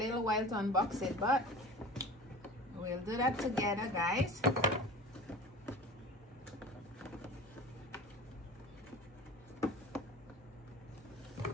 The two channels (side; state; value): both; normal; correlation 0.37